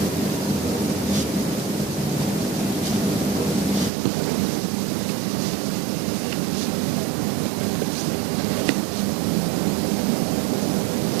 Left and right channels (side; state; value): left; drops out; at 3.9 s